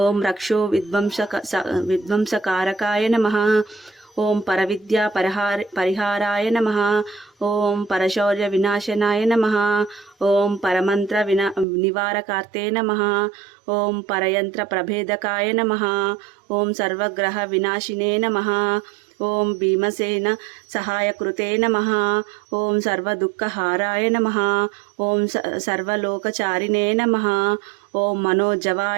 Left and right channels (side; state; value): left; drops out; at 11.7 s